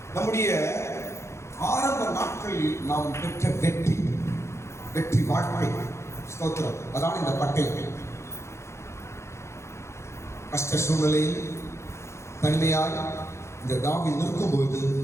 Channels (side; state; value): right; late; 0.13 ms